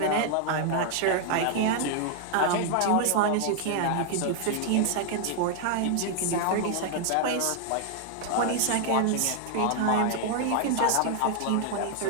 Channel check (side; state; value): both; different; correlation 0.00